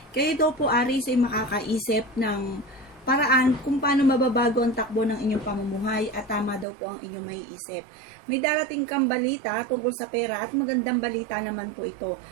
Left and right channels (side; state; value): left; drops out; at 6.7 s